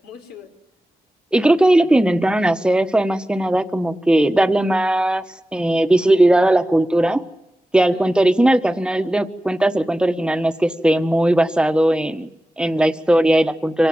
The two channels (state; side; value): normal; both; correlation 0.95